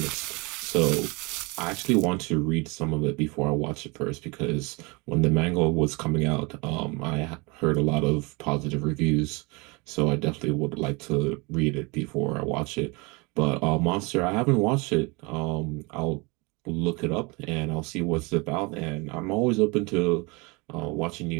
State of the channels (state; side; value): quieter; left; 27.7 dB